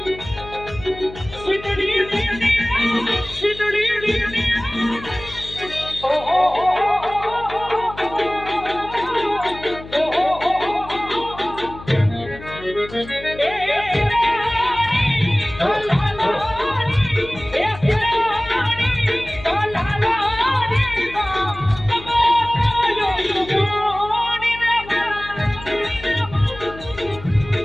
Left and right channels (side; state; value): left; noise; hum, 16 dB below the sound